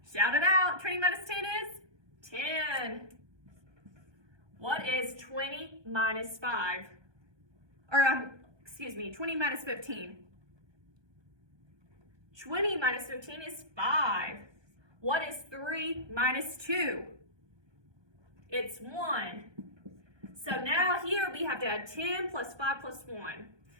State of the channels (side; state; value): left; late; 1.2 ms